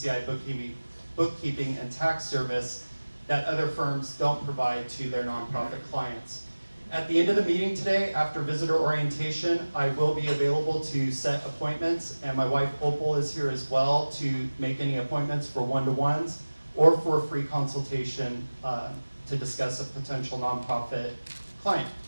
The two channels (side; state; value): both; inverted; correlation -1.00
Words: Bookkeeping and Tax Service that other firms don't provide to their nonprofit clients. At the end of the meeting today, after visitor orientation, I will be available to set appointments, and my wife Opal is here as well to make any appointments for one-to-ones or for a free consultation to discuss a potential nonprofit client.